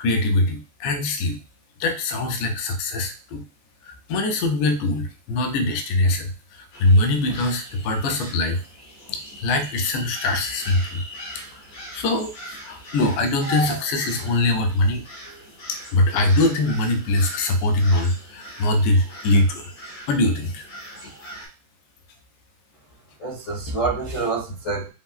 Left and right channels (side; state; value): right; late; 14 ms